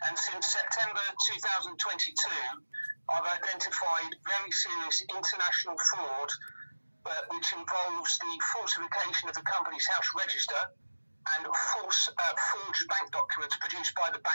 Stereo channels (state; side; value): inverted; both; correlation -1.00